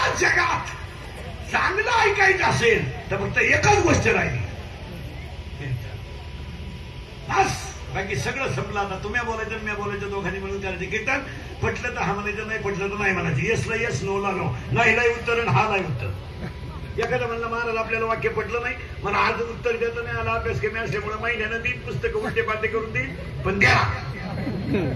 जगात चांगलं ऐकायचं असेल तर फक्त एकच गोष्ट राहिली, बस. बाकी सगळं संपलं. आता तुम्ही बोलायचं मी बोलायचं, दोघांनी मिळून करायचं कीर्तन. पटलं तर हा म्हणायचं, नाही पटलं तर नाही म्हणायचं. येसला येस, नोला नो. नाहीला उत्तर आणि हा नाही उत्तर. एखादा म्हणलं महाराज आपल्याला वाक्य पटलं नाही, मला आज उत्तर देता नाही आला, अभ्यास कमी असल्यामुळे महिन्यानं 3 पुस्तकं उलटे पालटे करून देईल, पण द्या.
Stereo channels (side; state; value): both; identical; correlation 1.00